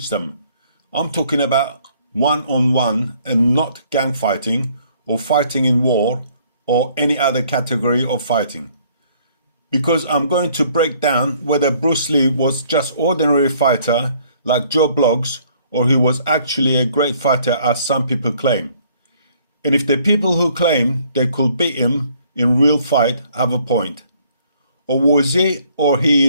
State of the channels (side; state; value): both; inverted; correlation -0.62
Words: them. I'm talking about one-on-one and not gang fighting or fighting in war or any other category of fighting. Because I'm going to break down whether Bruce Lee was just ordinary fighter like Joe Bloggs or he was actually a great fighter as some people claim. And if the people who claim they could beat him in real fight have a point. Or was he or he